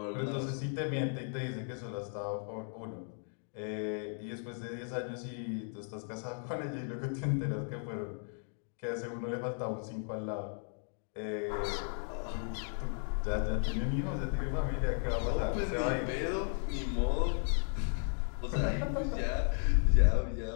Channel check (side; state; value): right; silent; 54 dB below the other